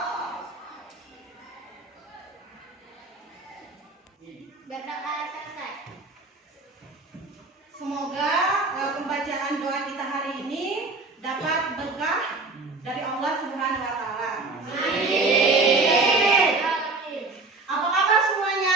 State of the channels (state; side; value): quieter; left; 3.6 dB